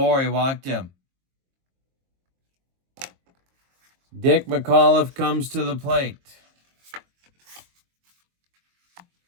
He walked him. Dick McAuliffe comes to the plate.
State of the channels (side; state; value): left; late; 22 ms